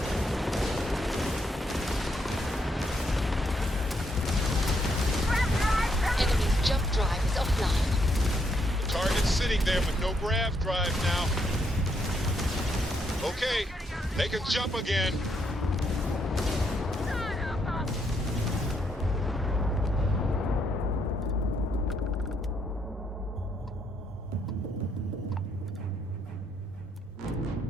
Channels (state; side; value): normal; both; correlation 0.75